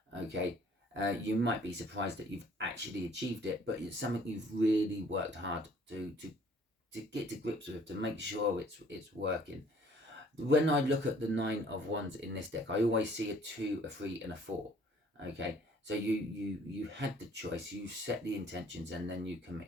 Okay, you might be surprised that you've actually achieved it, but it's something you've really worked hard to get to grips with, to make sure it's working. When I look at the Nine of Wands in this deck, I always see a 2, a 3, and a 4. Okay, so you had the choice, you set the intentions, and then you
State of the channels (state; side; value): normal; both; correlation 0.56